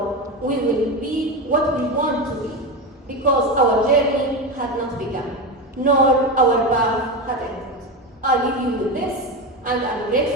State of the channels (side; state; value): both; normal; correlation 0.18